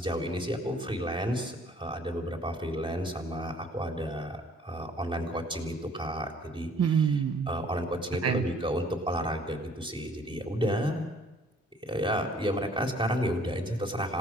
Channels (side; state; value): both; normal; correlation 0.57